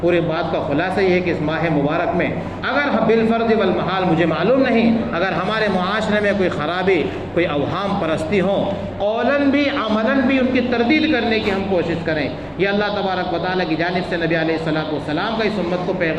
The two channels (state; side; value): identical; both; correlation 1.00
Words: بات کا خلاصہ یہ ہے کہ اس ماہ مبارک میں اگر بالفرض والمحال مجھے معلوم نہیں، اگر ہمارے معاشرے میں کوئی خرابی، کوئی اوہام پرستی ہوں، قولاً بھی عملاً بھی ان کی تردید کرنے کی ہم کوشش کریں، یہ اللہ تبارک و تعالیٰ کی جانب سے نبی علیہ السلام کا اس امت کو